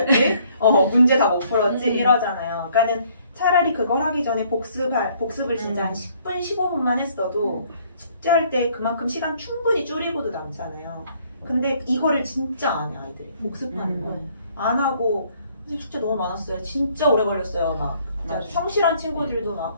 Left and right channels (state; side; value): inverted; both; correlation -0.63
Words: 문제 다 못 풀었지. 이러잖아요. 그러니까는 차라리 그걸 하기 전에 복습을 진짜 한 10분, 15분만 했어도 숙제할 때 그만큼 시간 충분히 줄이고도 남잖아요. 근데 이거를 진짜 안 해, 아이들이. 복습하는 걸. 안 하고, 숙제 너무 많았어요. 진짜 오래 걸렸어요. 막. 진짜 성실한 친구들도 막